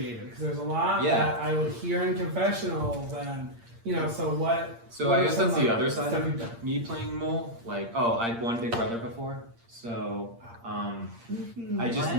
Because there's a lot Yeah. that I would hear in confessionals, and so what? So what I are guess some that's the other side stuff of you've done? me playing mole. Like, oh, I'd won Big Brother before, so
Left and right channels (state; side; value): late; left; 8.6 ms